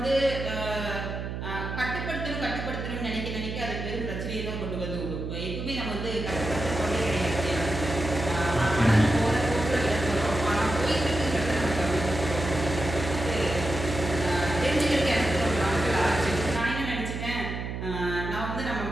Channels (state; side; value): noise; right; hum, 5 dB below the sound